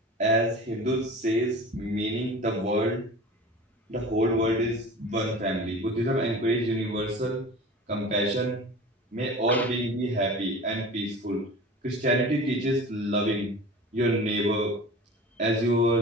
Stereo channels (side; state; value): both; normal; correlation 0.37